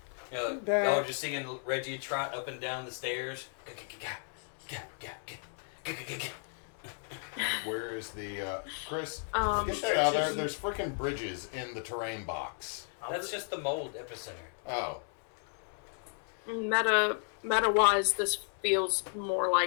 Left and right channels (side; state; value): right; silent; 55 dB below the other